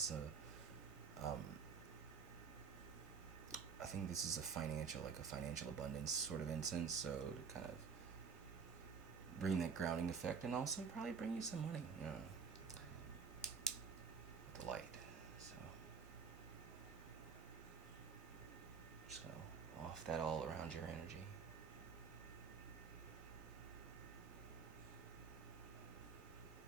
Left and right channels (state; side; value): quieter; left; 5.9 dB